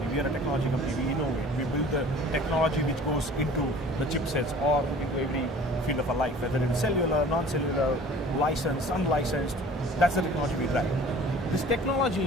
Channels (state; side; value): normal; both; correlation 0.47